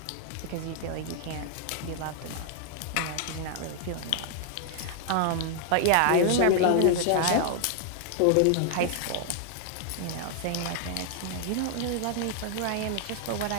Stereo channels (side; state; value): both; different; correlation 0.00